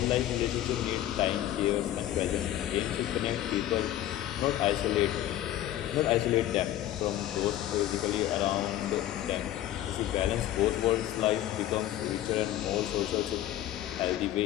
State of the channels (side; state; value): right; quieter; 13.2 dB